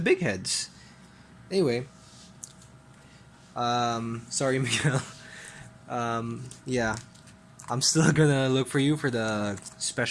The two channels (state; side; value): identical; both; correlation 1.00